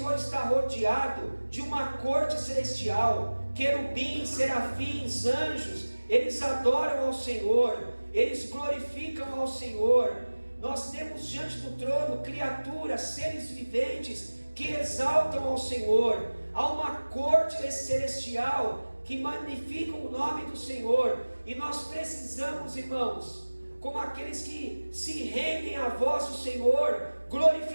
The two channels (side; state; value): both; inverted; correlation -1.00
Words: está rodeado de uma corte celestial, querubins, serafins, anjos, eles adoram ao Senhor, eles glorificam ao Senhor. Nós temos diante do trono criaturas, seres viventes que exaltam ao Senhor. Há uma corte celestial que magnifica o nome do Senhor, e nós precisamos, irmãos, como aqueles que se rendem à voz do Senhor,